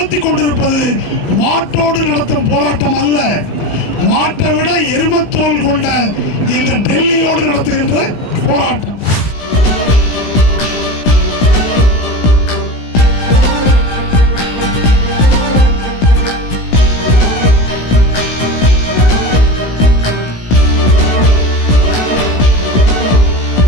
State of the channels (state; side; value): late; right; 17 ms